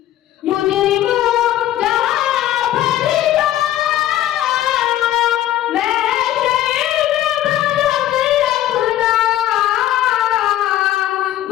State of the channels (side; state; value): right; quieter; 13.1 dB